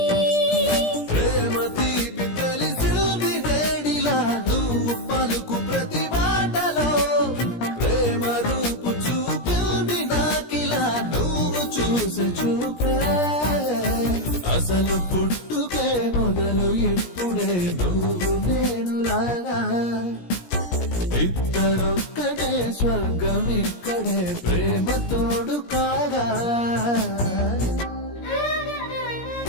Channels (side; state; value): right; late; 17 ms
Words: ప్రేమ తీపి తెలిసింది వేడిలా నువ్వు పలుకు ప్రతి మాటలో ప్రేమ రూపు చూపింది నాకిలా నువ్వు చూసే చూపే అసలు పుట్టుకే మొదలు ఇప్పుడే నువ్వు నేను లాగా ఇద్దరొక్కడే స్వర్గం ఇక్కడే ప్రేమ తోడు కాగా